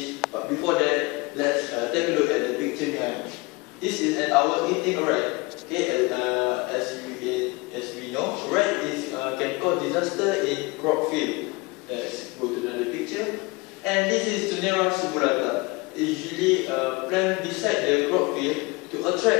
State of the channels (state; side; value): quieter; right; 24.9 dB